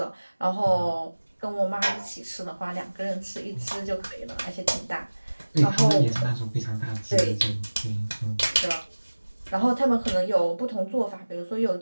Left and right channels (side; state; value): both; inverted; correlation -1.00